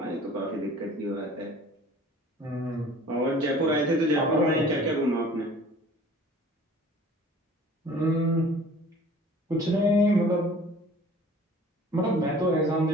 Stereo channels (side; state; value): both; normal; correlation 0.48